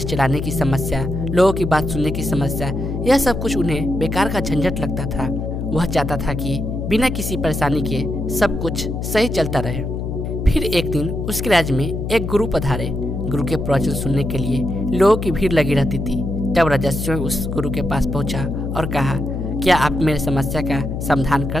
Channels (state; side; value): noise; left; hum, 4 dB below the sound